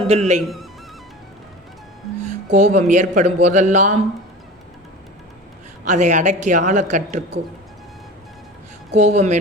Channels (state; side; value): normal; both; correlation 0.35